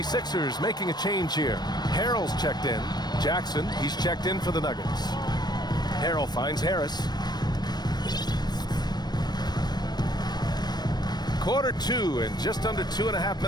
making a change here. Harrell's checked in. Jackson, he's checked in for the Nuggets. Harrell finds Harris. Quarter 2 and just under 2.5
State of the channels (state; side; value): late; right; 0.20 ms